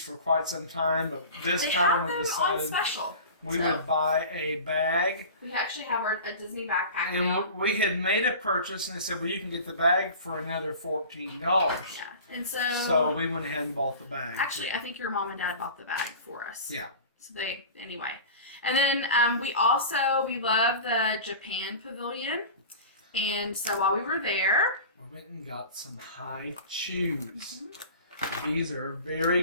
quite some time, but this time we decided on special. We would buy a bag. We actually have a Disney backpack and now. We had made a purchase, and they said, well, you can get the bag for another $14. Yeah. And so we went ahead and bought the bag. Actually, I think your mom and dad bought the bag for us. Yeah. So anyway. And then we love the Japan Pavilion. And so while we were there, we went and got some high chews. These are very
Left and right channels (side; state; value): both; inverted; correlation -0.36